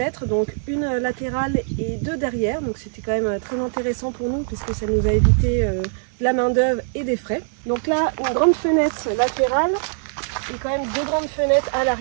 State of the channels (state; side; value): silent; left; 64 dB below the other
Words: donc une latérale et 2 derrière. Donc c'était quand même très intéressant pour nous puisque ça nous a évité de la main d'œuvre et des frais. Donc là, une grande fenêtre latérale et quand même 2 grandes fenêtres à